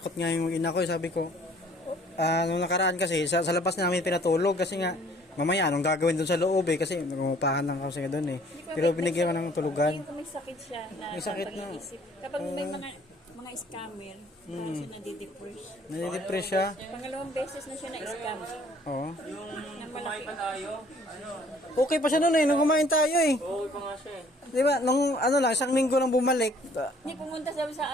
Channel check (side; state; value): both; normal; correlation 0.57